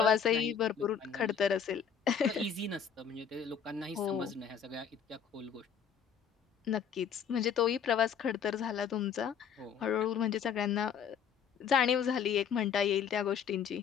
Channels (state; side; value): quieter; right; 7.5 dB